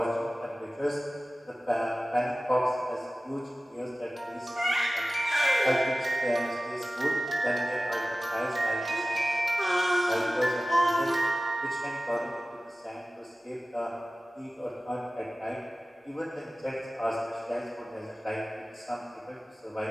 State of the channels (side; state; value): both; normal; correlation 0.96